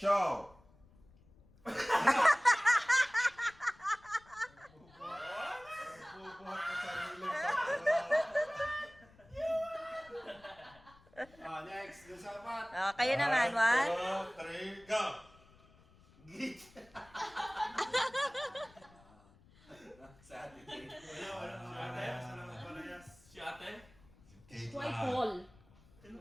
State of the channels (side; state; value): left; noise; rumble, 27 dB below the sound